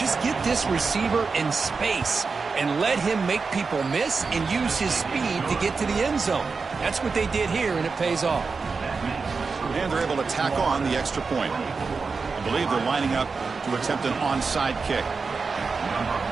get this receiver in space and let him make people miss and use his speed to get to the end zone. That's what they did here, and it pays off. And they're able to tack on the extra point. I believe they're lining up to attempt an onside kick.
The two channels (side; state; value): left; quieter; 4.7 dB